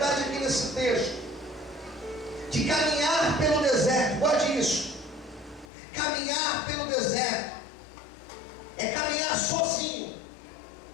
aqui nesse texto, de caminhar pelo deserto. Guarde isso. Caminhar pelo deserto é caminhar sozinho,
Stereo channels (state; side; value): drops out; right; at 5.7 s